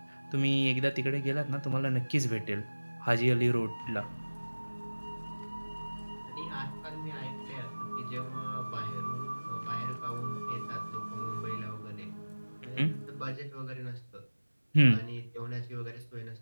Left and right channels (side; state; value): both; inverted; correlation -1.00